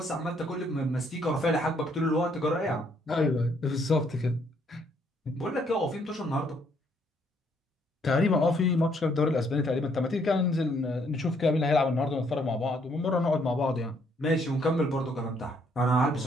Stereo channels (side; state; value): both; normal; correlation 0.69